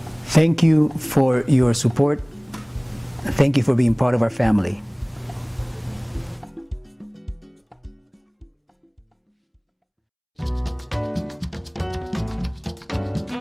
Thank you for your support. Thank you for being part of our family.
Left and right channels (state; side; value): identical; both; correlation 1.00